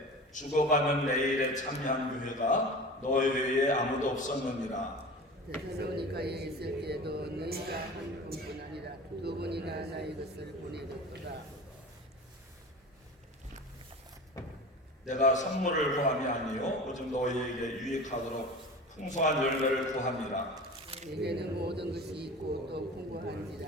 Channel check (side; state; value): both; normal; correlation 0.35